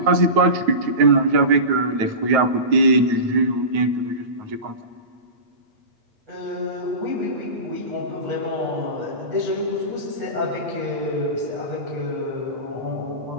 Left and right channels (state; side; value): late; left; 9.3 ms